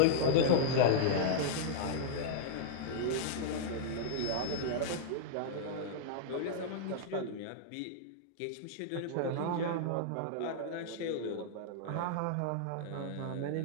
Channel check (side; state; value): both; different; correlation -0.01